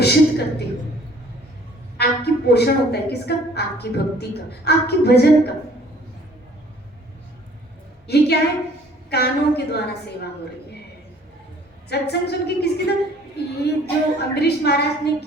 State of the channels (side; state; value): both; normal; correlation 0.55